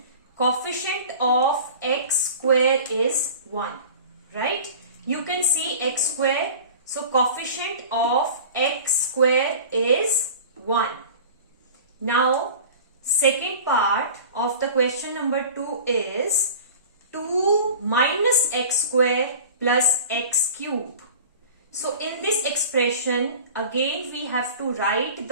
coefficient of x square is 1, right? You can see x square. So coefficient of x square is 1. Now second part of the question number 2 is 2 minus x square plus x cube. So in this expression again we have to write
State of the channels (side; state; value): both; inverted; correlation -0.39